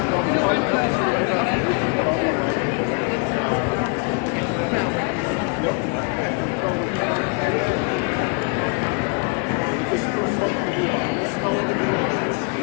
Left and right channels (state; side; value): quieter; right; 35.2 dB